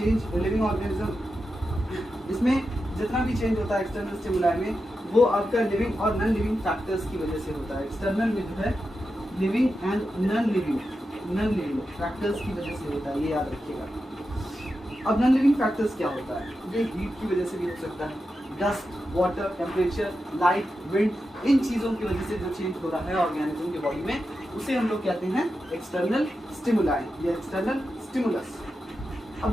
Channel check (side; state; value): both; normal; correlation 0.89